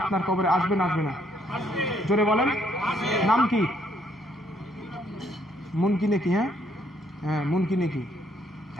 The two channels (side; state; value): both; normal; correlation 0.69